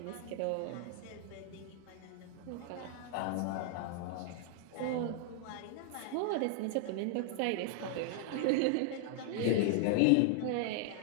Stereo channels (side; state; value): both; different; correlation -0.01